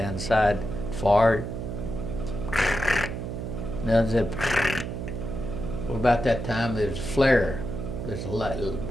side, far. Now that, well, about that time there was a flare. There's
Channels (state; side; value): noise; right; hum, 5 dB below the sound